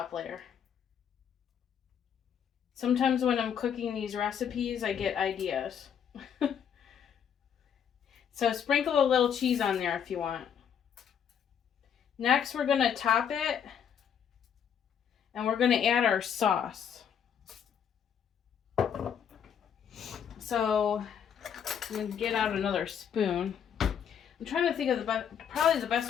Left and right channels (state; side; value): quieter; right; 8.2 dB